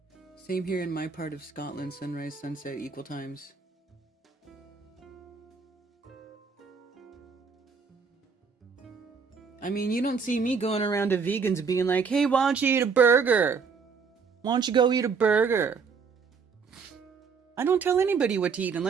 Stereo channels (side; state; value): left; quieter; 5.6 dB